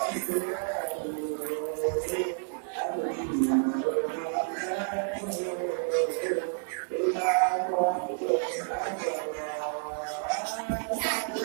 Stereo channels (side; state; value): left; silent; 58 dB below the other